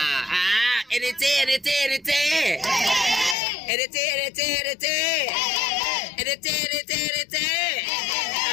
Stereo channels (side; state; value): right; drops out; at 3.4 s